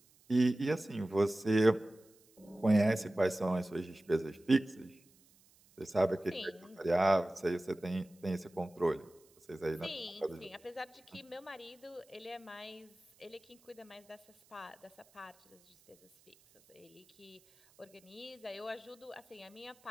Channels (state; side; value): noise; right; hiss, 30 dB below the sound